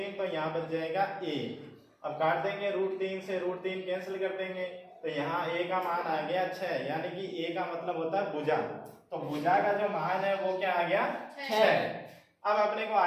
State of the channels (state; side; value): identical; both; correlation 1.00